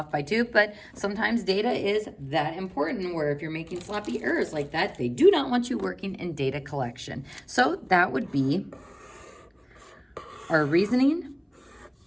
by 2, but sometimes data is that important where if you're making sloppy errors like that, they do not want you working in data collection. So that would be our reasoning,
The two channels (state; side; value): identical; both; correlation 1.00